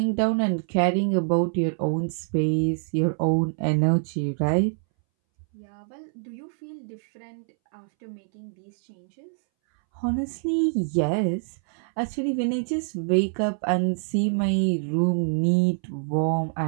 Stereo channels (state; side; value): silent; left; 61 dB below the other